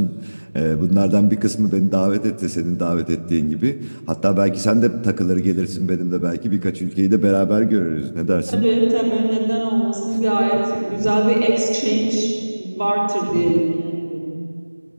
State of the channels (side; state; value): both; inverted; correlation -1.00